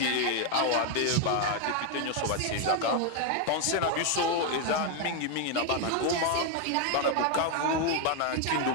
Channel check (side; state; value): both; different; correlation 0.01